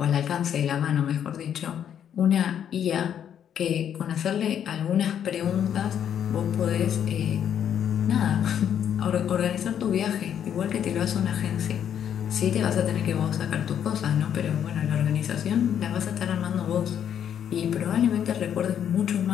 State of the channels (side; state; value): right; quieter; 9.2 dB